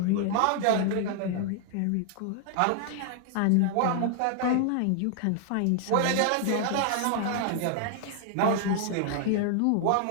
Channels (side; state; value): both; different; correlation 0.00